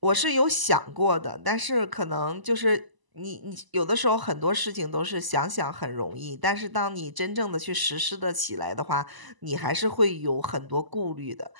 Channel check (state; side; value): late; left; 1.0 ms